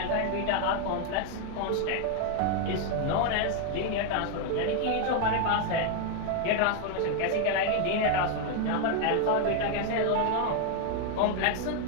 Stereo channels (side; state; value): both; different; correlation 0.01